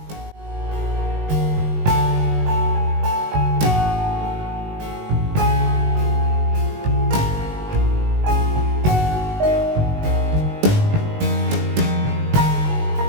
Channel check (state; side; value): late; left; 19 ms